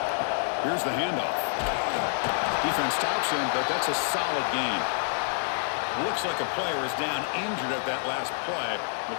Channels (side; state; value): right; silent; digital silence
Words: Here's the handoff. Defense stops him, but that's a solid gain. Looks like a player is down injured at that last play.